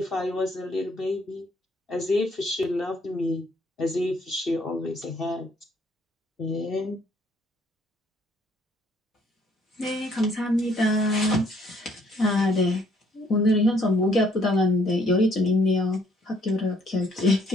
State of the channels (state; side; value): normal; both; correlation 0.65